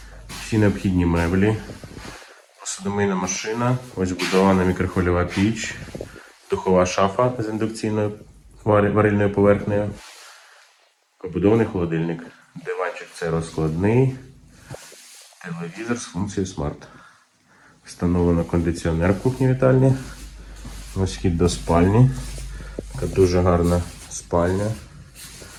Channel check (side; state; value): both; identical; correlation 1.00